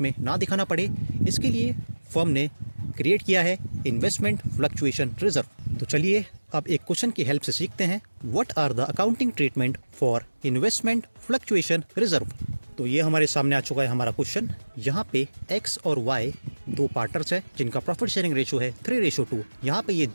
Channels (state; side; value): inverted; both; correlation -1.00